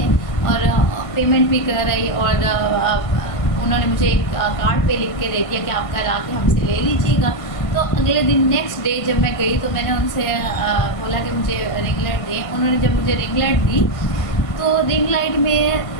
और पेमेंट भी कर रही। और उन्होंने मुझे एक कार्ड पे लिख के दे दिया कि आप कल आके हमसे ले लीजिएगा। तो अगले दिन नेक्स्ट डे जब मैं गई तो मैंने उनसे बोला कि मुझे रिंग लाइट दें। उन्होंने जब मुझे रिंग लाइट दी तो रिंग लाइट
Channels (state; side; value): late; right; 1.5 ms